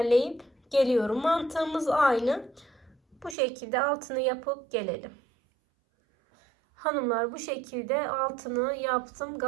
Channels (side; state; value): left; drops out; at 3.4 s